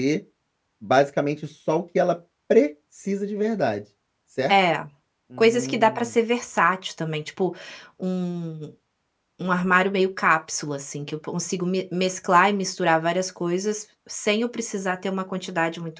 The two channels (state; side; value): identical; both; correlation 1.00